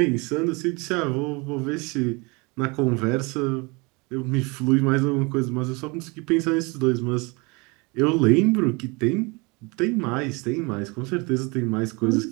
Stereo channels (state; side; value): quieter; left; 27.9 dB